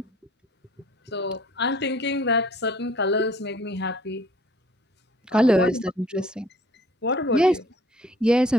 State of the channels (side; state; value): both; normal; correlation 0.55